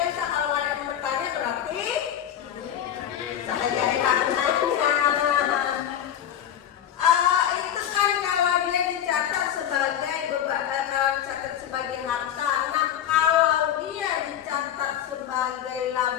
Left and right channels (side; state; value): right; quieter; 10.2 dB